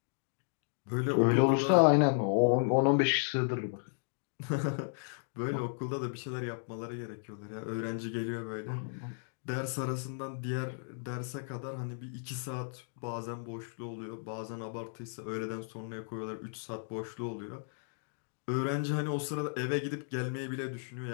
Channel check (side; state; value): right; silent; digital silence